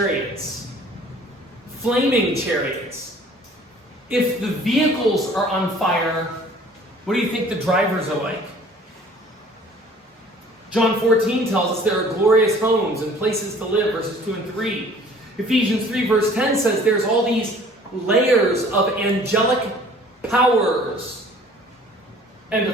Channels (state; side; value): normal; both; correlation 0.52